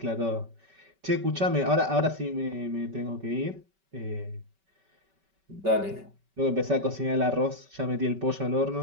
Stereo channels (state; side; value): late; left; 5.2 ms